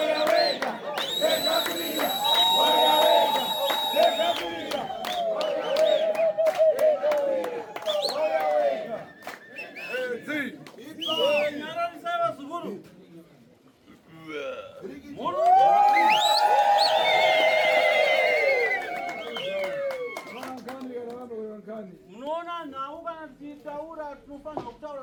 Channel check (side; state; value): both; identical; correlation 1.00